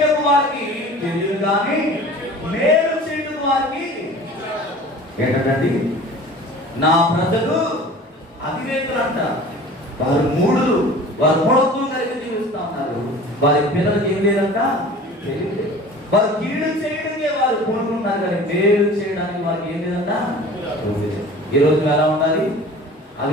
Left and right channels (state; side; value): normal; both; correlation 0.42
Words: వారికి తెలియదు కానీ మేలు చేయటకు వారికి ఏంటండి? నా ప్రజలు అవివేకులు అంట. వారు మూడులు, వారు మూఢత్వం కలిగి జీవిస్తా ఉన్నారు. వారి పిల్లలకి ఏం లేదంట, తెలియలేదు. వారు కీడు చేయడానికే వారు కోరుకుంటున్నారు కానీ మేలు చేయడానికి వారికి ఏం లేదంట. ఈరోజు నువ్వు ఎలా ఉండాలి?